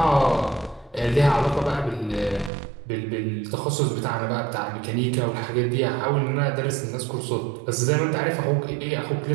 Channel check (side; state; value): left; drops out; at 2.5 s